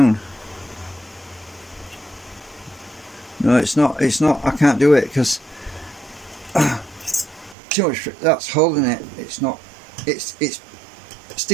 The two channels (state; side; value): drops out; left; at 7.6 s